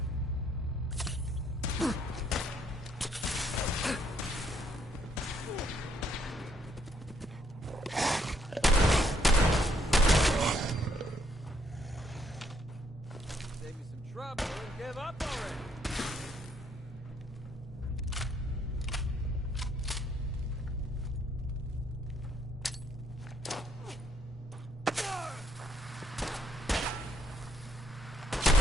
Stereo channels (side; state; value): both; normal; correlation 0.70